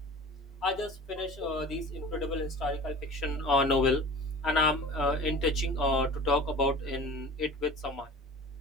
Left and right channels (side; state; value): both; normal; correlation 0.39